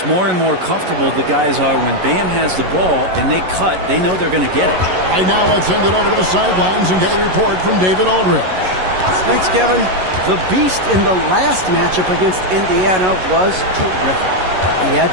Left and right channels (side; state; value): left; late; 11 ms